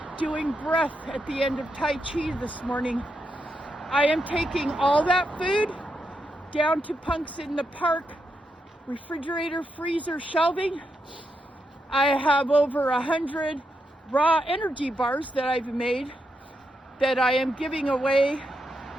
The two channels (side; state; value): both; normal; correlation 0.83